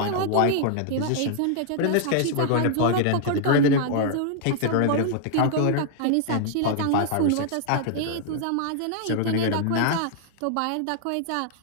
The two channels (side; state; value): both; different; correlation 0.00